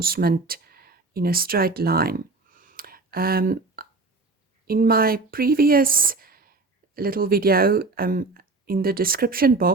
in a straight line. In my previous little video, in the description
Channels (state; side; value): quieter; left; 3.6 dB